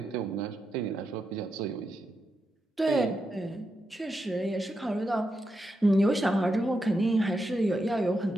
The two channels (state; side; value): normal; both; correlation 0.85